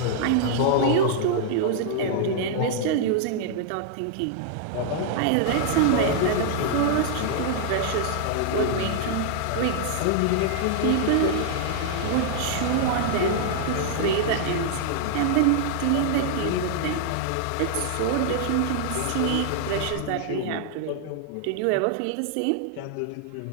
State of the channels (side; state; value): both; different; correlation -0.01